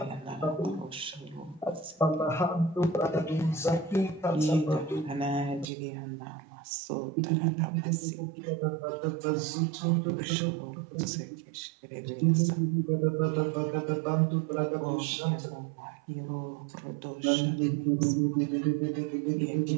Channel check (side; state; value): left; drops out; at 5.7 s